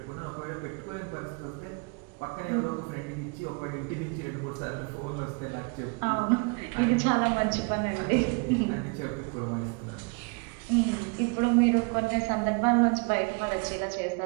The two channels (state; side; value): quieter; left; 34.0 dB